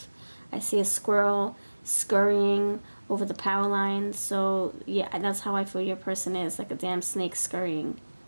I see a squirrel scurrying over the power line. So, yeah, that's how I feel your person is, like a damn snake scurrying.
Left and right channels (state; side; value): inverted; both; correlation -1.00